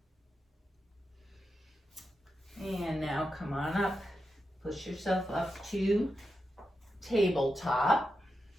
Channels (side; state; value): both; normal; correlation 0.88